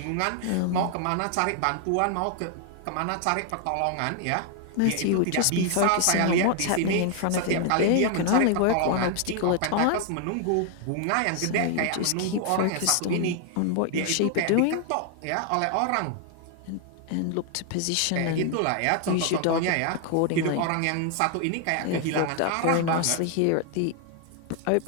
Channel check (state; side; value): different; both; correlation 0.00